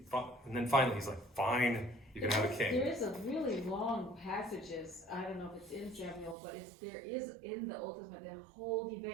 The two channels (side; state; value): left; drops out; at 6.4 s